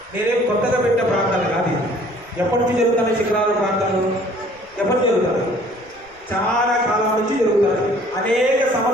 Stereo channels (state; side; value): noise; left; rumble, 29 dB below the sound